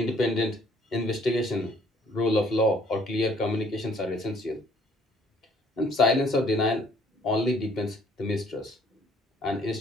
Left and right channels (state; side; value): normal; both; correlation 0.61